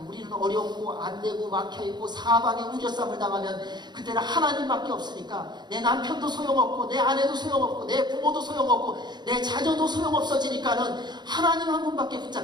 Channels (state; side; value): late; left; 0.21 ms